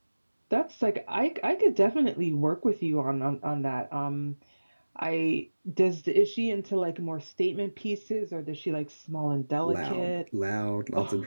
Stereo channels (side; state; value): both; inverted; correlation -1.00